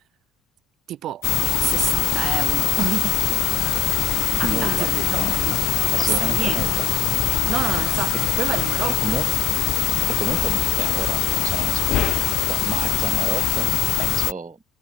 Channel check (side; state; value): right; quieter; 7.3 dB